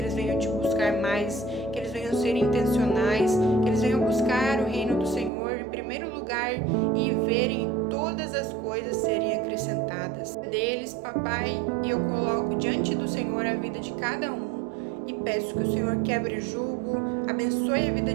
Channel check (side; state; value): left; drops out; at 5.3 s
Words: venham te buscar mais, que eles venham ser intencionais, que eles venham buscar o reino do Senhor em primeiro lugar e verem todas as coisas serem acrescentadas deles, papai, e eu coloco diante do Senhor a vida de cada um e peço que o Senhor quebre o jugo, abençoe a vida